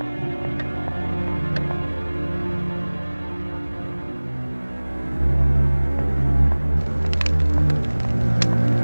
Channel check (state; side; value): inverted; both; correlation -1.00